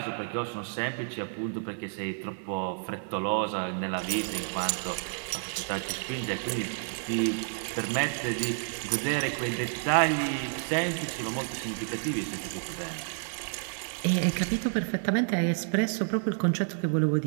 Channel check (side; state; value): left; silent; digital silence